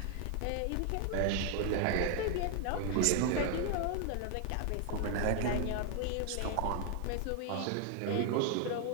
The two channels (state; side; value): different; both; correlation 0.00